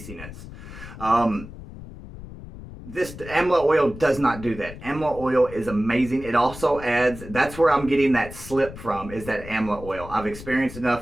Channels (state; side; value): noise; left; rumble, 14 dB below the sound